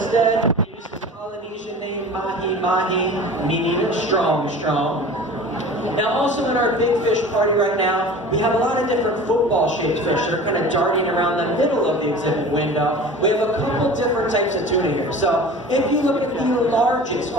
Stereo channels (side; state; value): both; normal; correlation 0.39